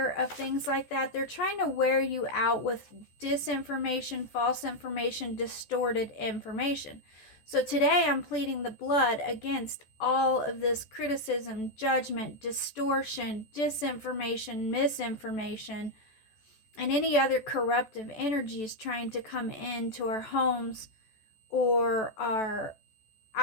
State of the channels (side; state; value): right; late; 14 ms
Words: of things like that. They're trying to wear you out with disinformation, false information, distorted information. So today I'm pleading the blood against all of this criticism, judgment, distortion, disinformation, misinformation, and any other corruptive energies trying to come into our homes or our...